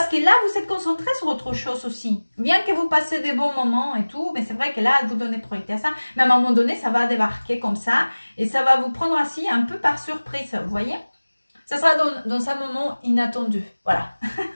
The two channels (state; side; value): inverted; both; correlation -1.00